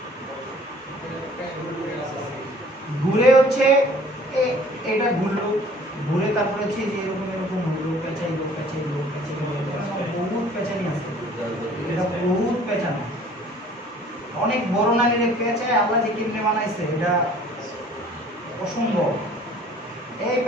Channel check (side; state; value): both; normal; correlation 0.52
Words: ঘুরে হচ্ছে এটা ঘুরলো, ঘুরে তারপরে হচ্ছে যে এরকম এরকম হলো, পেঁচাইলো পেঁচাইলো পেঁচাইলো, বহুত পেঁচানি আছে, এটা বহুত পেঁচানো, অনেক বড় নালীর পেঁচায় আল্লাহ যে কেমনে বানাইছে এটা অসম্ভব। এই